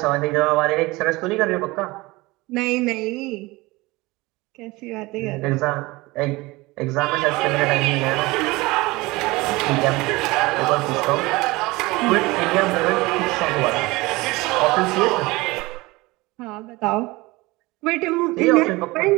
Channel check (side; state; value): left; quieter; 21.9 dB